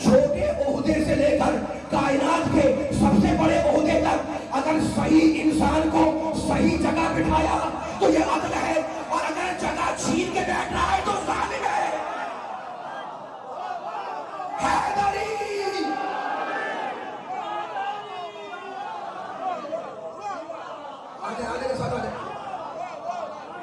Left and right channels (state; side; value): identical; both; correlation 1.00